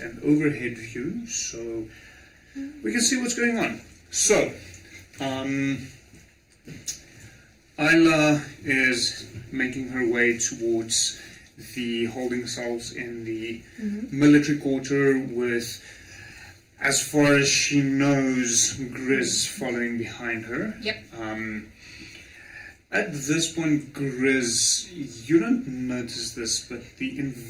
an overhead view, so we can see what's going on. So, Isla is making her way towards the holding cells in the military quarter with, as far as she knows, Grizz following behind her. Yep. At this point, Grizz, you don't notice this, but the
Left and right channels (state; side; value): identical; both; correlation 1.00